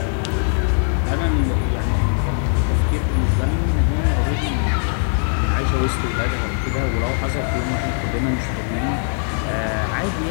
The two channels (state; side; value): silent; right; 65 dB below the other